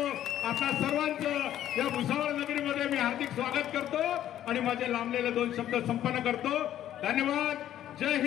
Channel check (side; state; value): right; quieter; 11.7 dB